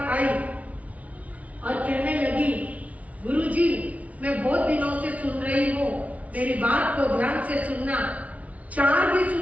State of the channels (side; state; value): left; late; 0.068 ms